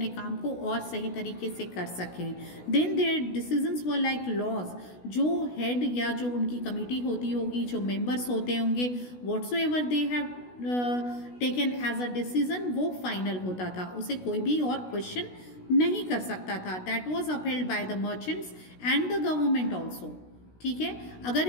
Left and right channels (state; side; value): late; right; 16 ms